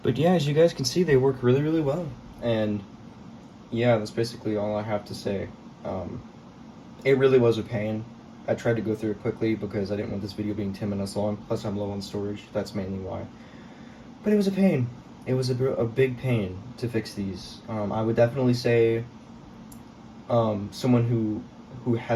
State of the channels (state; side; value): identical; both; correlation 1.00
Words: But yeah, as you guys can see, they work really, really well. And yeah, that's basically all I have to say. It really was a pain. I tried to go through it quickly because I didn't want this video being 10 minutes long. Plus, I'm low on storage. That's mainly why. But it was a pain. It was a big pain to fix these. I would definitely say someone who